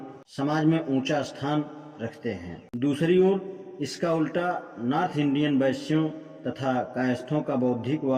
समाज में ऊंचा स्थान रखते हैं। दूसरी ओर इसका उल्टा नॉर्थ इंडियन वैश्यों तथा कायस्थों का बौद्धिक व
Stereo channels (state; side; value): identical; both; correlation 1.00